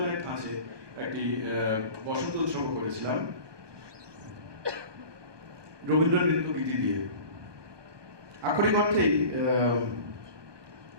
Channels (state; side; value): late; left; 1.2 ms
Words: ধাঁচে একটি বসন্ত উৎসবও করেছিলাম রবীন্দ্র নৃত্য গীতি দিয়ে। আক্ষরিক অর্থেই